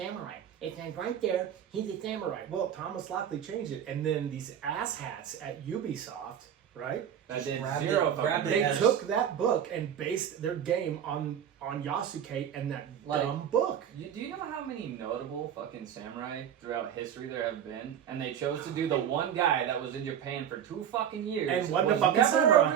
It says right there, he's a samurai. Well, Thomas Lockley changed it, and then these asshats at Ubisoft, right? That did grabbed zero it- fucking grabbed it They as- took that book and based their game on Yasuke and that dumb book. Do you know how many notable fucking samurai throughout history there have been? And they chose to do the one guy that was in Japan for 2 fucking years And wasn't a was fucking never samurai. a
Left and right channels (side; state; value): left; quieter; 9.2 dB